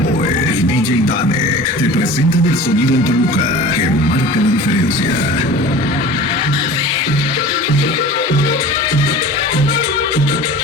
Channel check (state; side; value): normal; both; correlation 0.39